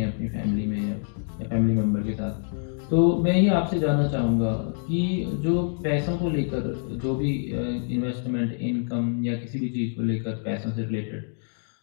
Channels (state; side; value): silent; right; 61 dB below the other